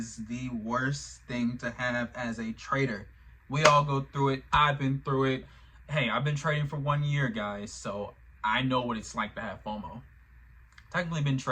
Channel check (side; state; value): both; identical; correlation 1.00